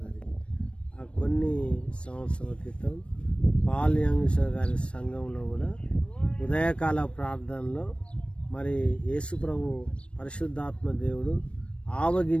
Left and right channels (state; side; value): late; right; 0.059 ms